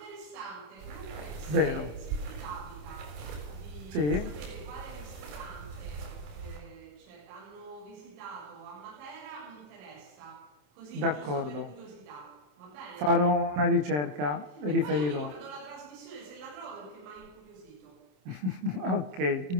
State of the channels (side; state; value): left; late; 27 ms